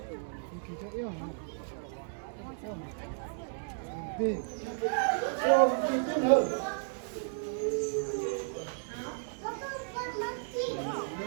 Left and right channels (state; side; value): silent; left; digital silence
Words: kỳ cho yêu hả đi ô kỳ thế nào